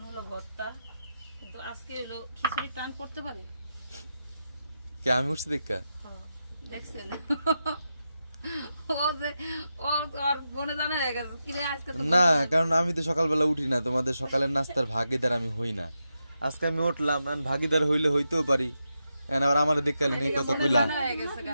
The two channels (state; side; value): inverted; both; correlation -0.88